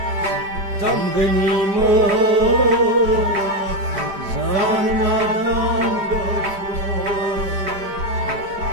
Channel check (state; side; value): late; left; 5.2 ms